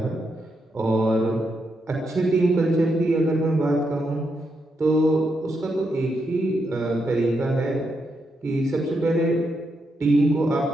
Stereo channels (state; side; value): normal; both; correlation 0.82